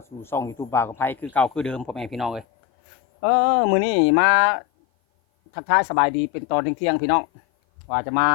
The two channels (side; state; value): right; drops out; at 2.5 s